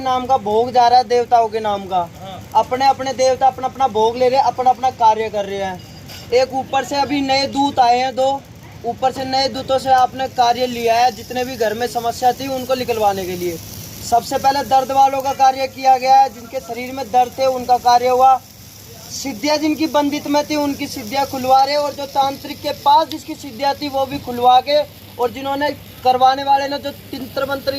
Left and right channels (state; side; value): identical; both; correlation 1.00